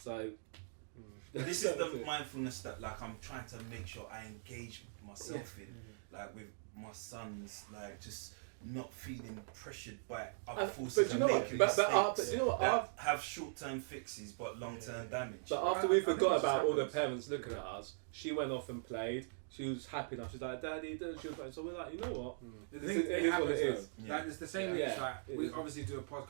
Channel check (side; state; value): left; silent; digital silence